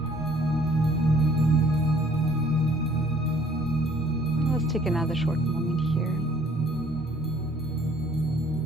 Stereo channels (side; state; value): both; normal; correlation 0.58